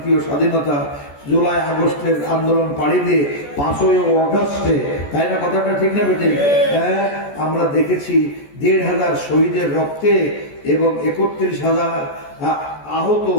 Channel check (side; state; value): right; late; 14 ms